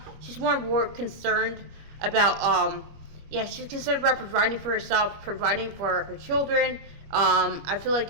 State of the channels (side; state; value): left; late; 25 ms